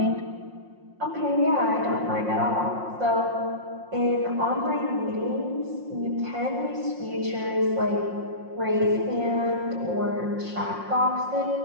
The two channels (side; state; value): left; late; 5.6 ms